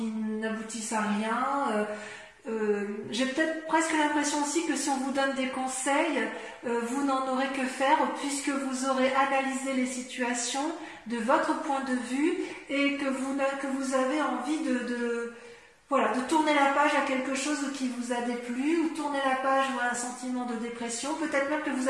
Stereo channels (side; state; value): both; identical; correlation 1.00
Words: à rien. J'ai peut-être presque l'impression aussi que si on vous donne des conseils, vous n'en aurez que faire, puisque vous aurez analysé les situations de votre point de vue et que vous avez envie de tourner la page à quelque chose qui vous a déplu, ou tourner la page à un sentiment de dépression. Peut-être même que vous